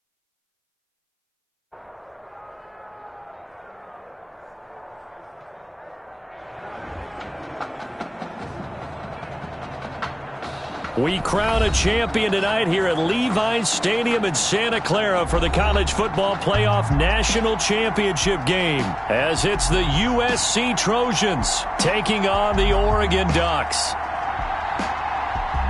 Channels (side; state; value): both; identical; correlation 1.00